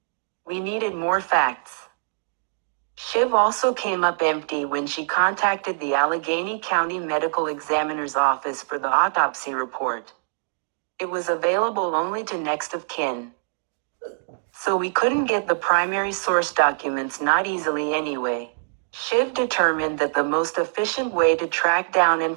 We needed more facts. Shiv also came up empty when she contacted the Allegheny County Medical Examiner's Office for the autopsy report. It was available only to next of kin. So we couldn't get the primary source documents, not easily anyway. Shiv determined that the most efficient way to track down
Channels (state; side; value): silent; left; digital silence